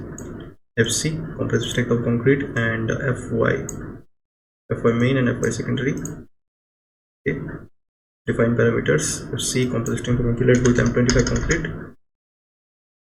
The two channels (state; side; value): identical; both; correlation 1.00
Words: FC compressive strength of concrete and FY main and FY secondary. Okay, define parameters. FC compressive strength of concrete, let's go with M25 concrete.